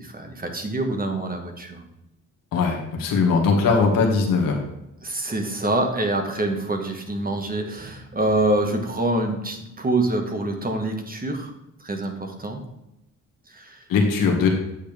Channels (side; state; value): both; normal; correlation 0.39